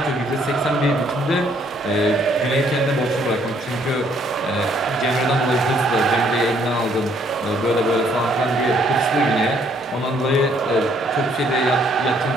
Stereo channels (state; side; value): normal; both; correlation 0.66